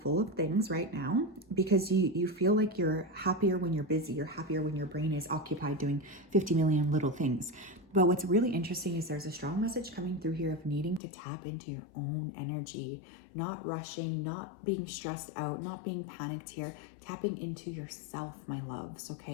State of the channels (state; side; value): drops out; right; at 11.0 s